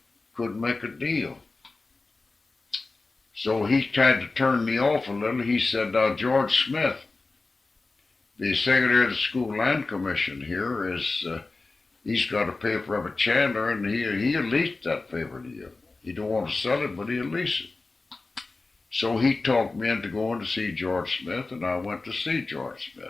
make a deal. So he tried to turn me off a little. He said, George Smith, the secretary of the School Land Commission here, he's got a paper up at Chandler, and he'll lease that paper to you. He don't want to sell it, but he'll lease it. So he talked me into going to see George Smith, and I went to see George Smith.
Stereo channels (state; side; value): quieter; right; 3.6 dB